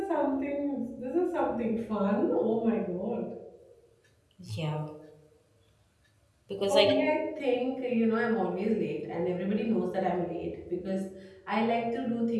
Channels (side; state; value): both; identical; correlation 1.00